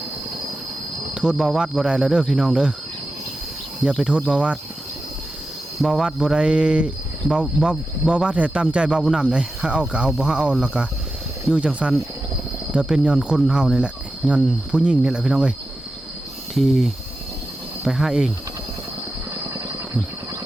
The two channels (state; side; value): normal; both; correlation 0.91